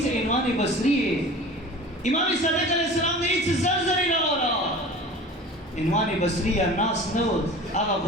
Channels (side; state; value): both; normal; correlation 0.39